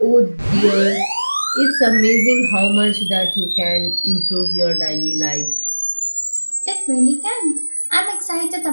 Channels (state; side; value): inverted; both; correlation -1.00